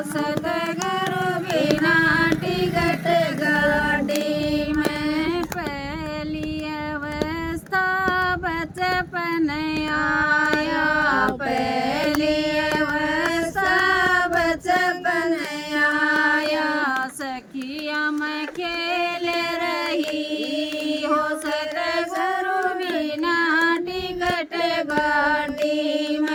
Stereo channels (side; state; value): both; identical; correlation 1.00